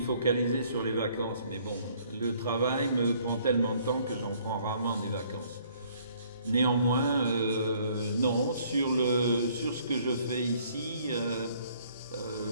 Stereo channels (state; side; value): inverted; both; correlation -0.61